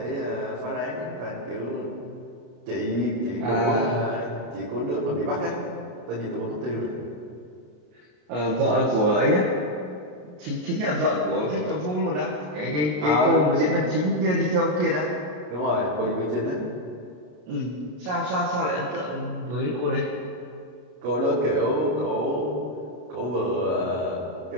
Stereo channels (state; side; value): late; left; 33 ms